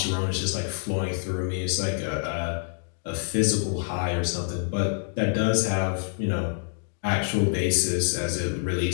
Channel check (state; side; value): silent; right; digital silence